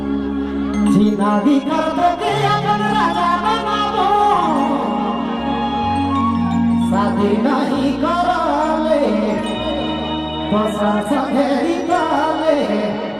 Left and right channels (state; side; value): identical; both; correlation 1.00